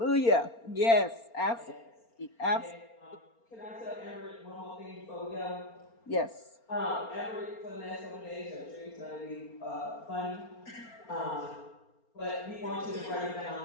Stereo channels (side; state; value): right; late; 4.3 ms